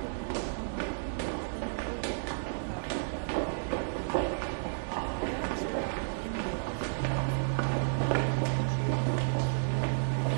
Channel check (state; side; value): silent; left; digital silence